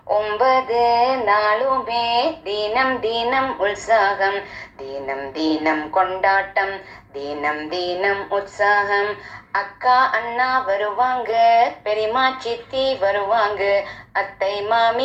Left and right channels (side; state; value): both; identical; correlation 1.00